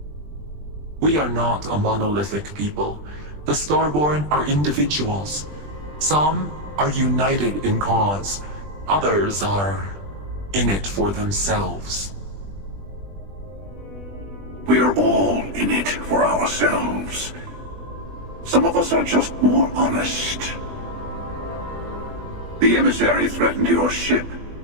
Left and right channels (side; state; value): left; late; 20 ms